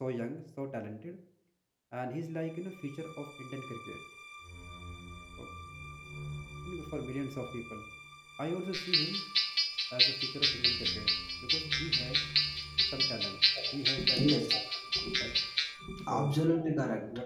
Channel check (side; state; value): both; identical; correlation 1.00